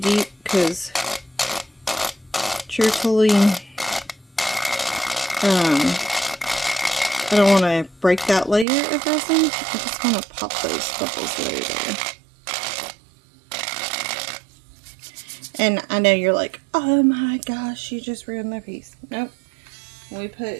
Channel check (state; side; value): drops out; left; at 8.7 s